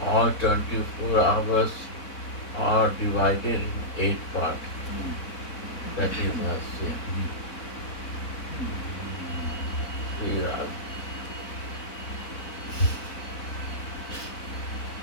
all 24 hours are divided in 8 parts. That is Astyam. Sri Radha.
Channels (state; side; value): late; right; 4.1 ms